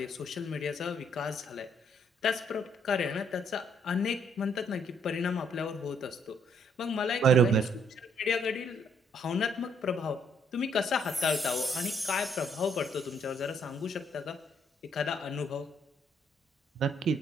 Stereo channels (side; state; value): both; normal; correlation 0.68